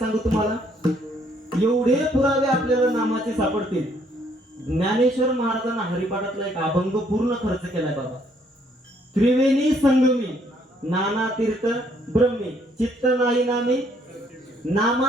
तुम्हाला, एवढे पुरावे आपल्याला नामाचे सापडतील. ज्ञानेश्वर महाराजांना हरिपाठातला एक अभंग पूर्ण खर्च केलाय बाबा. त्रिवेणी संगमी नाना तीर्थ ब्रह्मी चित्त नाही नामे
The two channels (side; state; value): both; normal; correlation 0.67